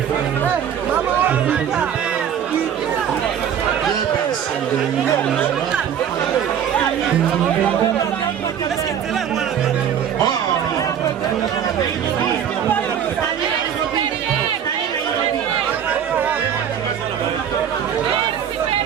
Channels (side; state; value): left; quieter; 8.8 dB